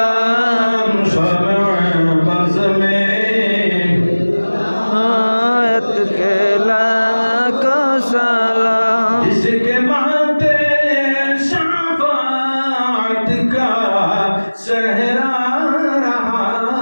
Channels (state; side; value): inverted; both; correlation -1.00